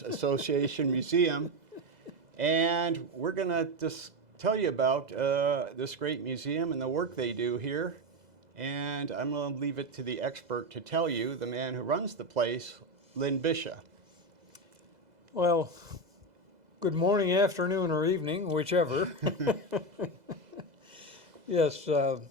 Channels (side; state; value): left; late; 2.0 ms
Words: Association Museum, and we're going to just tell you about this great museum and the work they do here. And I'm going to leave it to the expert to tell you, the man who runs the place, Lynn Bisha. Well, good morning, afternoon, or evening, whichever. Yes,